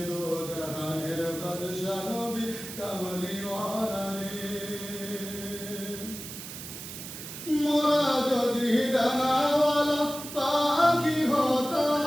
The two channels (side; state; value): right; noise; hiss, 10 dB below the sound